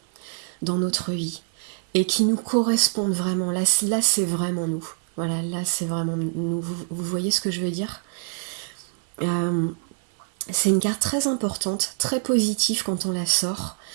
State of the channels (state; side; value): silent; left; 56 dB below the other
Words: dans notre vie et qui nous correspondent vraiment. Là c'est vraiment nous. Voilà, là c'est vraiment nous. Vous voyez ce que je veux dire? Euh, c'est une carte très importante, très positive quand on la sort.